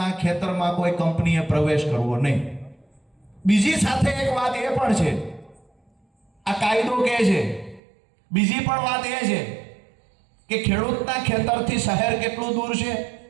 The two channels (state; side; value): drops out; left; at 7.8 s